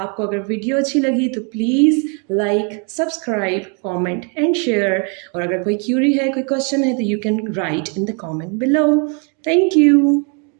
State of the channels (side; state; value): left; quieter; 36.9 dB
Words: आपको अगर वीडियो अच्छी लगी तो please like, subscribe, comment and share. और अगर कोई क्यूरी है, कोई क्वेश्चन है तो you can write in the comment below। Thank you।